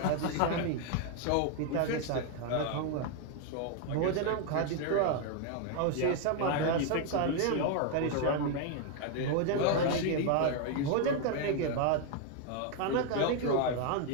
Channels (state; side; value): different; both; correlation 0.00